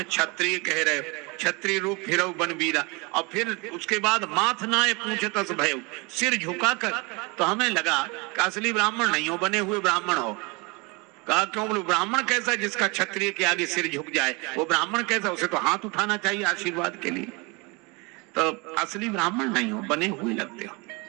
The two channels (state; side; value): quieter; left; 27.9 dB